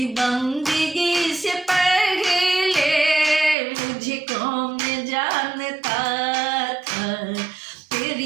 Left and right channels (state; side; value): drops out; left; at 3.6 s